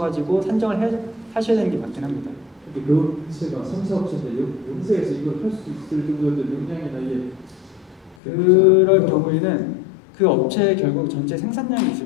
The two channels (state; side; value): drops out; right; at 8.2 s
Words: 산정을 하셔야 되는 게 맞긴 합니다. 근데 그 업체가 3사업체인데 영세에서 이걸 할 수 있을 정도의 역량이나 이게 그럴 경우에는 그 업체에 결국 전체 생산량이